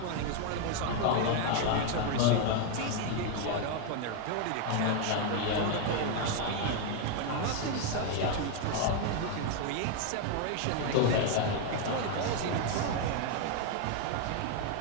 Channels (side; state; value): both; different; correlation 0.01